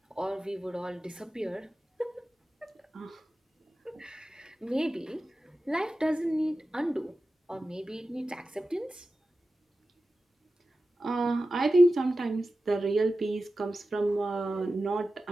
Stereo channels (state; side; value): normal; both; correlation 0.94